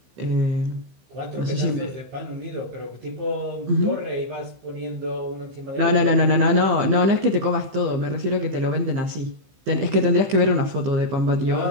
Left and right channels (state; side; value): late; left; 15 ms